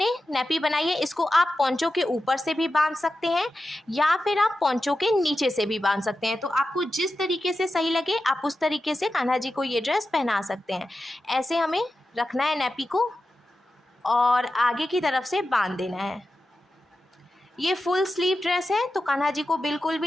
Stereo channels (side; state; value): both; normal; correlation 0.92